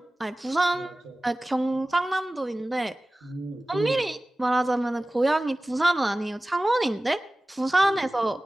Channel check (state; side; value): normal; both; correlation 0.97